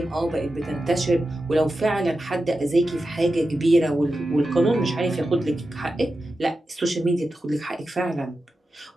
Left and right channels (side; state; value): both; normal; correlation 0.91